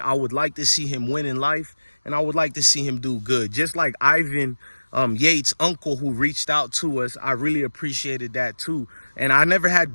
would like to see him win in life, and I would like to see him do good. Just like Ivan Yates' uncle, who reached out to us, I really appreciated that too. And I never had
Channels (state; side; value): inverted; both; correlation -1.00